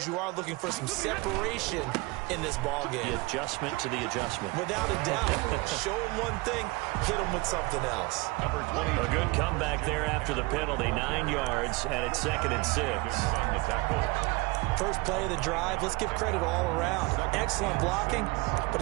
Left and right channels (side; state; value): left; quieter; 24.4 dB